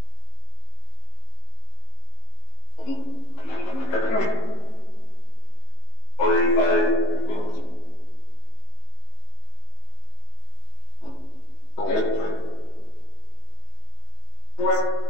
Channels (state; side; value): late; right; 19 ms